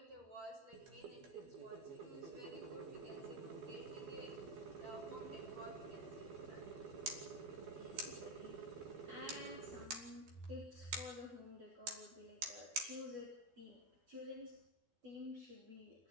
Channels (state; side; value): late; left; 12 ms